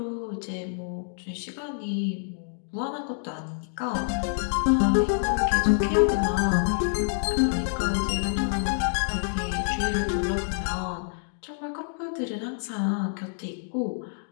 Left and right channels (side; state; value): right; silent; digital silence